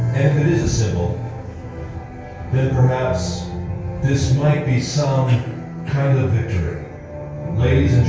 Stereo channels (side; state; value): both; identical; correlation 1.00